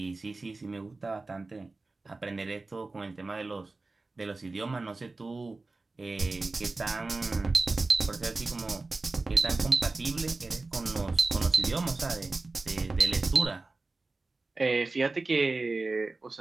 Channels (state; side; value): quieter; left; 3.5 dB